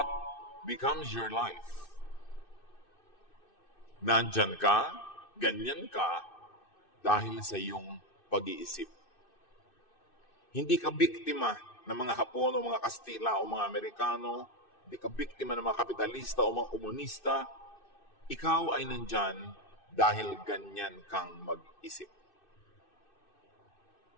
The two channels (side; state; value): right; late; 2.6 ms